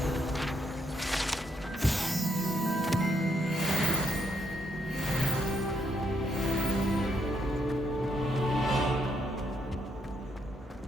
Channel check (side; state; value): both; normal; correlation 0.76